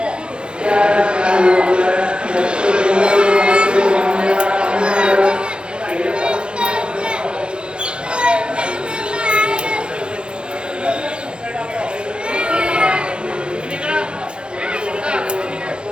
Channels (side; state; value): left; late; 0.053 ms